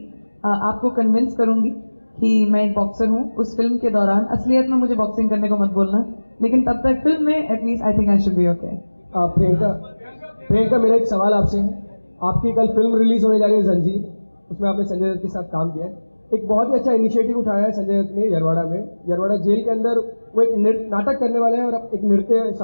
आपको कन्विंस करूँगी कि मैं एक बॉक्सर हूँ. उस फिल्म के दौरान असलियत में मुझे बॉक्सिंग करने को मत बोलना, लेकिन तब तक फिल्म में at least I think I should be okay. Priyanka, मेरा एक सवाल आपसे है. आपकी कल फिल्म रिलीज होने जा रही है जंजीर, उसमें आपने संजय दत्त के साथ काम किया है. एक बहुत ही अच्छा इनिशिएटिव उठाया है संजय दत्त ने यरवाड़ा में. यरवाड़ा जेल के अंदर वो एक नाटक करने वाले हैं और एक नृत्य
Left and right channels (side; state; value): both; inverted; correlation -1.00